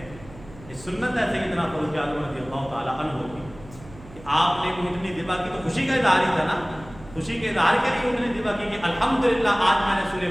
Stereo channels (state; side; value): noise; right; hum, 19 dB below the sound